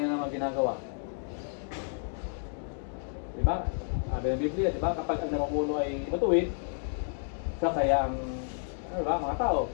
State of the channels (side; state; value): right; silent; digital silence